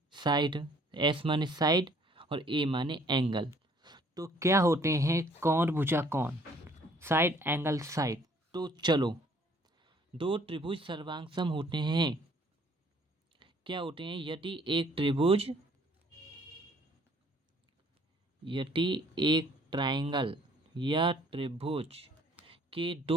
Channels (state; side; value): normal; both; correlation 0.59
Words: साइड, एस माने साइड और ए माने एंगल। तो क्या होते हैं कौन भुजा कौन, साइड एंगल साइड। तो चलो, दो त्रिभुज सर्वांग होते हैं। क्या होते हैं? यदि एक ट्रायंगल या त्रिभुज के